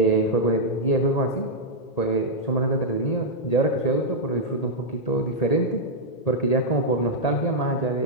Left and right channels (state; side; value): late; right; 1.8 ms